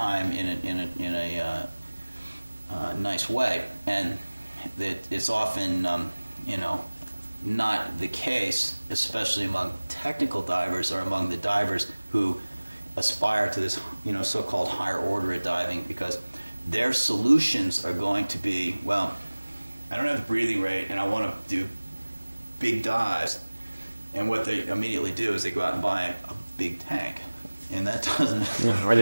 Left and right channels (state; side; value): inverted; both; correlation -1.00